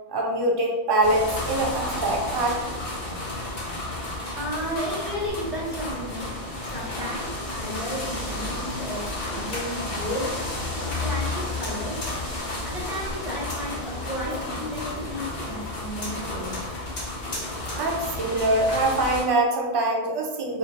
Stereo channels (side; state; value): right; late; 1.6 ms